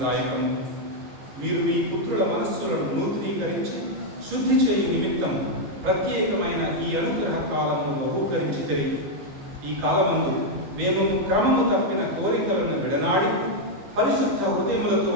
మీరు మీ పుత్రుల మనస్సులను నూతనీకరించి శుద్ధి చేయి నిమిత్తం ప్రత్యేకమైన ఈ అనుగ్రహ కాలమును బహూకరించి ఈ కాలమందు మేము క్రమము తప్పిన కోరికలను విడనాడి పరిశుద్ధ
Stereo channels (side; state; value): left; late; 15 ms